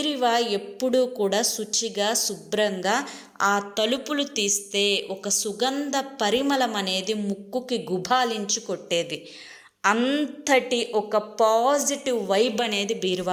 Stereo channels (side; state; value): both; identical; correlation 1.00